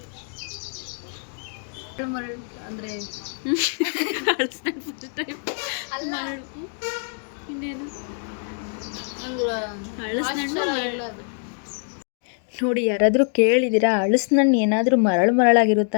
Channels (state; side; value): silent; right; 56 dB below the other